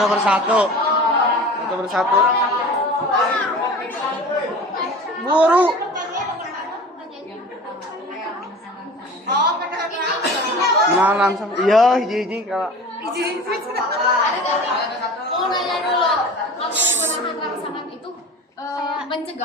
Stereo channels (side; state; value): both; normal; correlation 0.38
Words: persatu. Satu persatu. Buru. Nah, langsung. Iya, hiji kalau. Mau nanya dulu, kamu menahan rasa